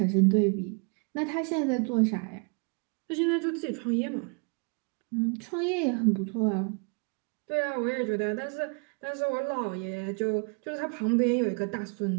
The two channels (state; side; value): quieter; left; 36.3 dB